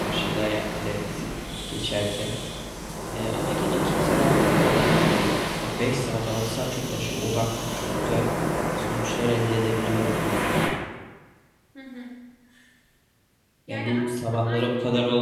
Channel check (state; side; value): identical; both; correlation 1.00